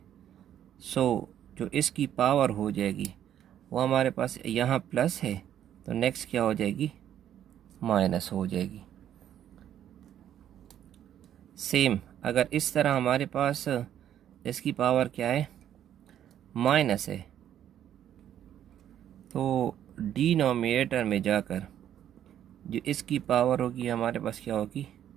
सो जो इसकी पावर हो जाएगी वो हमारे पास यहाँ प्लस है, तो नेक्स्ट क्या हो जाएगी, माइनस हो जाएगी। सेम अगर इस तरह हमारे पास इसकी पावर क्या है, माइनस है, तो डिनोमिनेटर में जाकर जो इसकी पावर होगी हमारे पास क्या होगी,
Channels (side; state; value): left; quieter; 10.5 dB